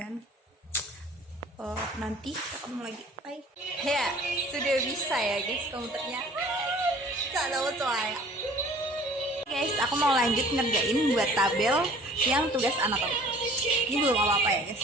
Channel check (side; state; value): both; normal; correlation 0.50